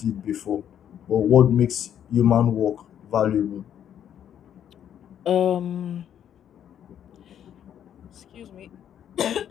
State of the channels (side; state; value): right; quieter; 9.7 dB